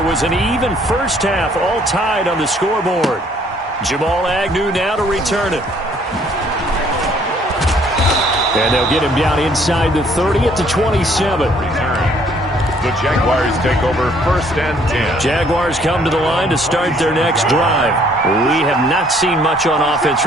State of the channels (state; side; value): normal; both; correlation 0.62